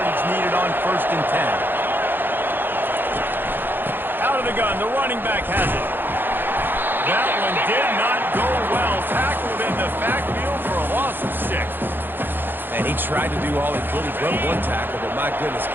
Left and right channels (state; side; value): late; left; 0.098 ms